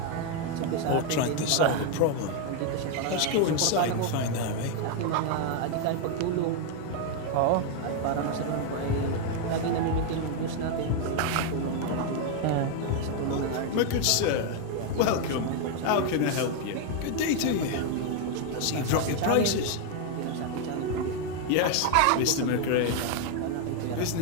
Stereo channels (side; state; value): both; different; correlation 0.01